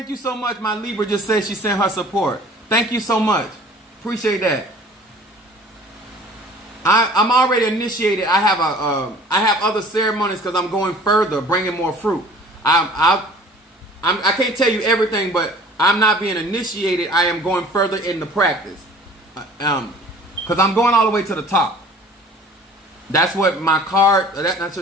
you so much. My Libra just said she sent her support. Thank you so much. Appreciate that. I'm already initiated. I have other ceremonies because I'm going further, bringing more fruit. I can't tell you everything, but I'm not being initiated. I am going further in the practice. Because I'm going all the way to the top. That's what my card. I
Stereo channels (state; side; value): normal; both; correlation 0.48